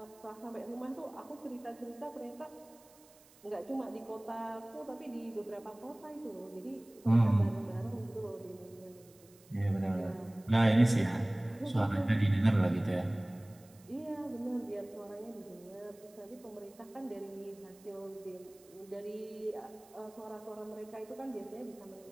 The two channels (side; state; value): right; noise; hiss, 26 dB below the sound